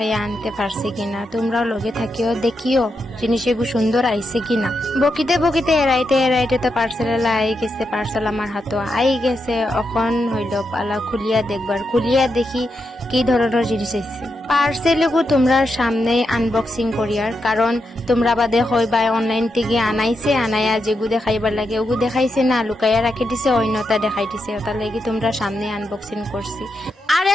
আনতে পারছি কিনা, তোমরাও লগে থাকিও দেখিও জিনিস এগু সুন্দর আইছে কিনা। বকিতে এরাইতে তো পার্সেল আই গেছে। পার্সেল আমার হাতে আই গেছে। এখন হইল পালা খুলিয়া দেখবার। খুলিয়া দেখি কি ধরনের জিনিস আইছে। পার্সেল এগু তোমরা সামনে আনবক্সিং করিয়ার, কারণ তোমরা বাদে হইবা অনলাইন থেকে আনাইয়া যেগু দেখাইবার লাগে ওগু দেখাইছে না, লুকাইয়া রাখি দিছে, অন্যতা দেখাই দিছে। তার লাগি তোমরা সামনে আনবক্সিং করছি। আর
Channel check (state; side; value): normal; both; correlation 0.85